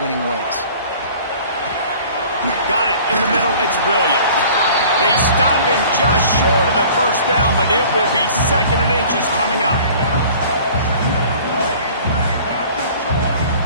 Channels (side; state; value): both; inverted; correlation -0.48